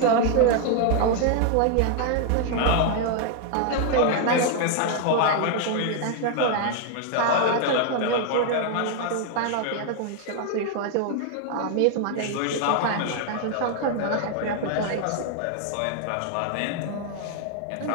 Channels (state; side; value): different; both; correlation 0.00